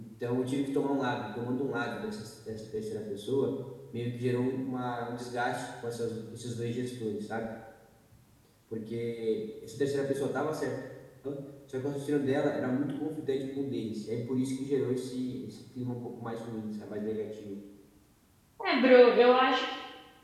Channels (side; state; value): both; identical; correlation 1.00